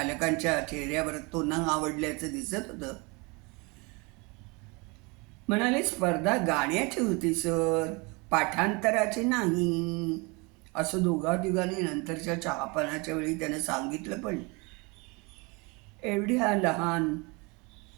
चेहऱ्यावर तो न आवडल्याचं दिसत होतं. म्हणाले, स्पर्धा गाण्याची होती सर, पाठांतराची नाही. असं दोघांनी नंतरच्या चहापानाच्या वेळी त्यानं सांगितलं. पण एवढ्या लहान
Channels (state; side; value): quieter; left; 28.4 dB